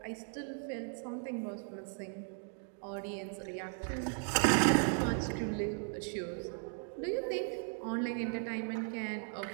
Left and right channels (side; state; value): left; silent; 53 dB below the other